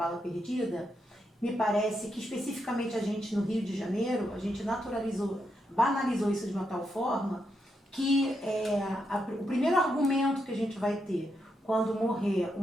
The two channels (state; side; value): normal; both; correlation 0.82